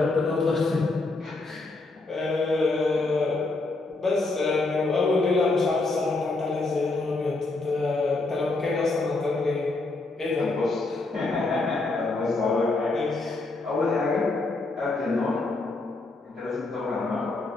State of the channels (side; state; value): right; quieter; 3.3 dB